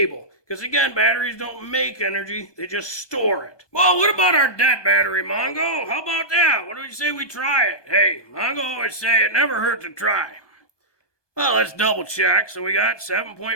Because again, batteries don't make energy, they just store it. Well, what about our dead battery, Mongo? How about that? What do you say we try it? Hey, Mongo always say it never hurts to try. Well, let's double check. So we got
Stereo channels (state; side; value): late; right; 1.2 ms